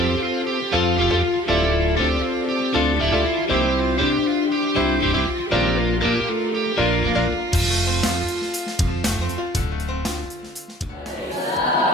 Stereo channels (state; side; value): normal; both; correlation 0.59